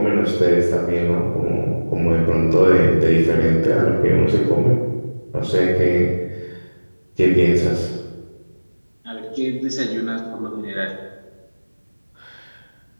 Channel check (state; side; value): inverted; both; correlation -1.00